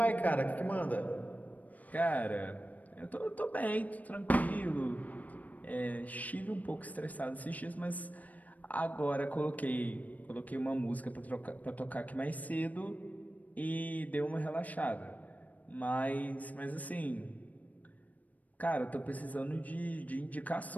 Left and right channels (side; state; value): right; late; 0.074 ms